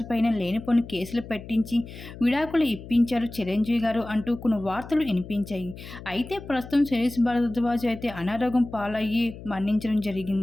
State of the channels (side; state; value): left; noise; hum, 14 dB below the sound